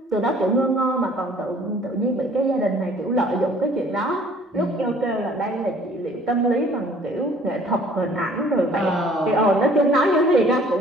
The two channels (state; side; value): normal; both; correlation 0.55